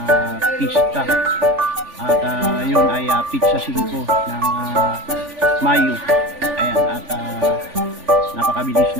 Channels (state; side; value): late; left; 3.4 ms